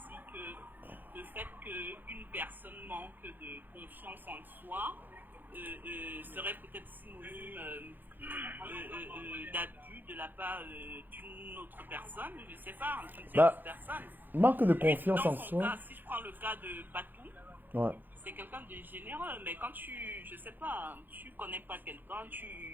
que le fait qu'une personne manque de confiance en soi serait peut-être synonyme d'abus de la part d'une autre personne, je sais pas, d'une tierce personne. Manque de confiance Dans en son soi. cas, si je prends le cas de Patou, Ouais. c'est quelqu'un de généreux, mais quand je sais pas, tu connais pas quelqu'un,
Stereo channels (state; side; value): late; left; 0.089 ms